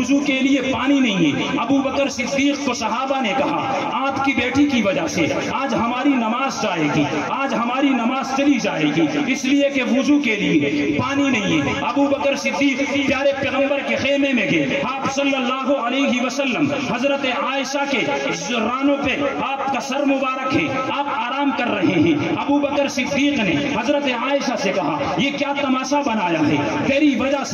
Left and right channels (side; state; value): both; identical; correlation 1.00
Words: کے لیے پانی نہیں ہے۔ ابو بکر صدیق کو صحابہ نے کہا آپ کی بیٹی کی وجہ سے آج ہماری نماز جائے گی، آج ہماری نماز چلی جائے گی، اس لیے کہ وضو کے لیے پانی نہیں ہے۔ ابو بکر صدیق پیارے پیغمبر کے خیمے میں گئے، آپ صلی اللہ علیہ وسلم حضرت عائشہ کے رانوں پہ آپ کا سر مبارک ہے، آپ آرام کر رہے ہیں۔ ابو بکر صدیق نے حضرت عائشہ سے کہا یہ کیا تماشا بنایا ہے، تیری وجہ